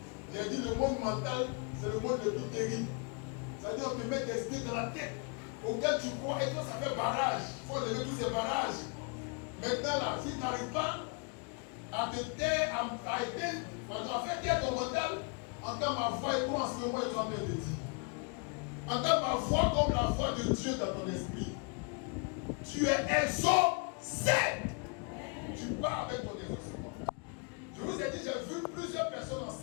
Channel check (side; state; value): right; quieter; 35.5 dB